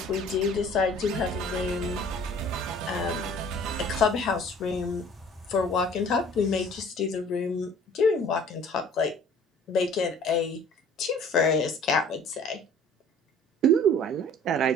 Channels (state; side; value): normal; both; correlation 0.50